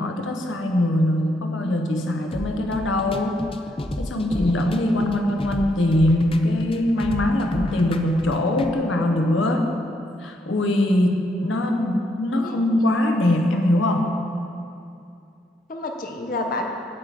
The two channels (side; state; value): both; normal; correlation 0.75